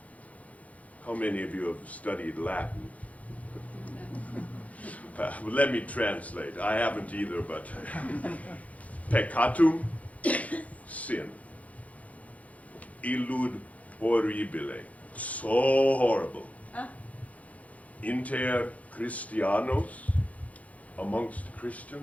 How many of you have studied Latin? Let me translate. I haven't either, but peccatum, sin. Illud horribile, so horrible. Inter Christianos, amongst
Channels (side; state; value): right; late; 0.069 ms